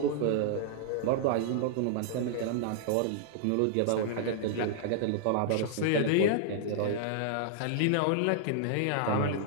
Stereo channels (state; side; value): different; both; correlation -0.01